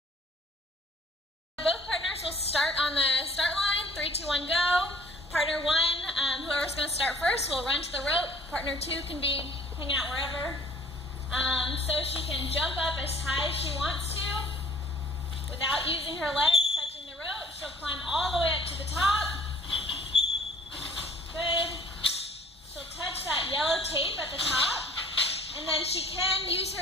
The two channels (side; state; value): both; normal; correlation 0.55